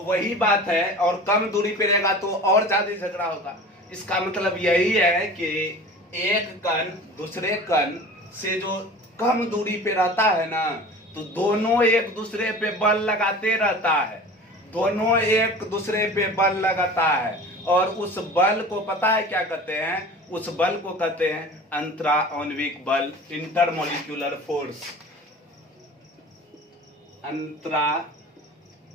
वही बात है, और कम दूरी पे रहेगा तो और ज्यादा झगड़ा होगा। इसका मतलब यही है कि एक कण दूसरे कण से जो कम दूरी पे रहता है ना, तो दोनों एक दूसरे पे बल लगाते रहता है, दोनों एक दूसरे पे बल लगाता है, और उस बल को पता है क्या कहते हैं? उस बल को कहते हैं अंतराआण्विक बल, इंटरमोलिक्यूलर फोर्स। अंतराआण्विक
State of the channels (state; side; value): normal; both; correlation 0.39